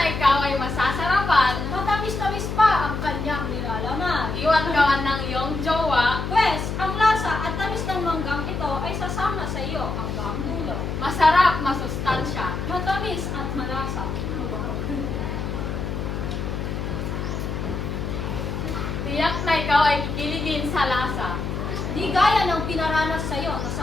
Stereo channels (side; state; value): left; noise; hum, 4 dB below the sound